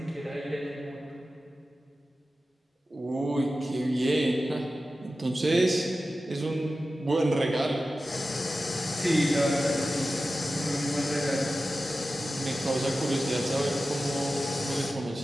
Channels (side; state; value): both; normal; correlation 0.94